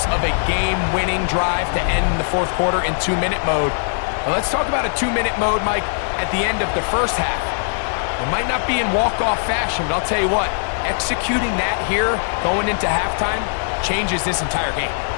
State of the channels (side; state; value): right; silent; digital silence